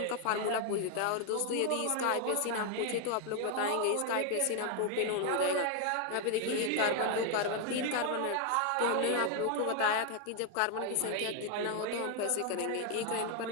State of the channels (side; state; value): both; different; correlation 0.01